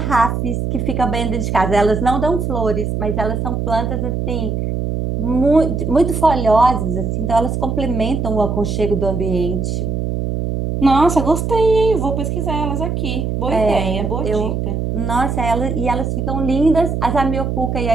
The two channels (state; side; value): noise; right; hum, 2 dB below the sound